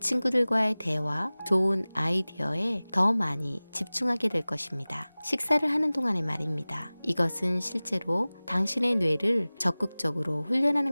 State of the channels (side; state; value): both; inverted; correlation -0.99